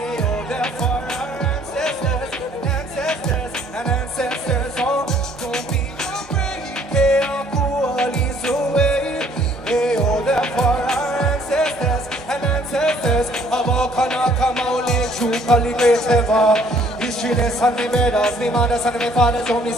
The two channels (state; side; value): normal; both; correlation 0.61